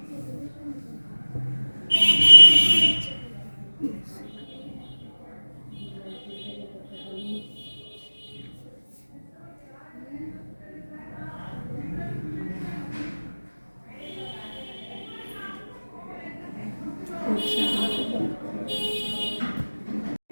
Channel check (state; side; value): inverted; both; correlation -1.00